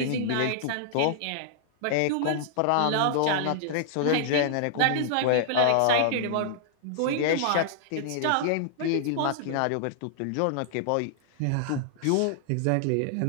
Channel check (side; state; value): both; different; correlation -0.01